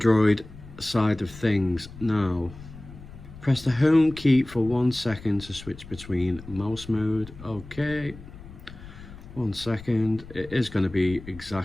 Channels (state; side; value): noise; left; rumble, 16 dB below the sound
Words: side of things now. Press the home key for 1 second to switch between mouse mode. Okay, 1 second. It is going to be